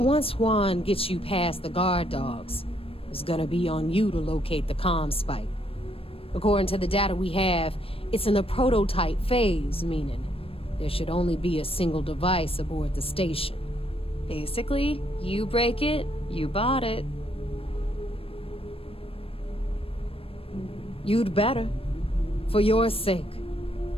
Juan gets you past the guard dogs, it's gonna be on you to locate the comm spike. According to the data we have, it's in the prototype phase, meaning there should only be a single device aboard the station. Basically, you break it, you bought it. You'd better. For your sake.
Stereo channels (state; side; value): late; right; 0.27 ms